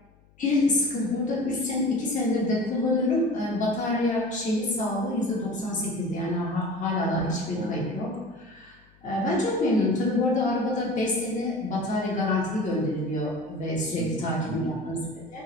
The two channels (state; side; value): noise; left; hum, 30 dB below the sound